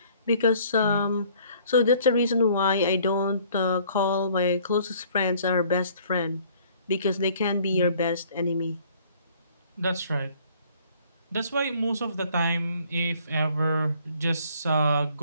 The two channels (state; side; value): inverted; both; correlation -0.57